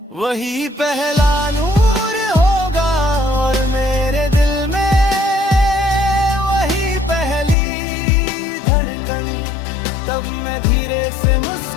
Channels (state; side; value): drops out; right; at 7.6 s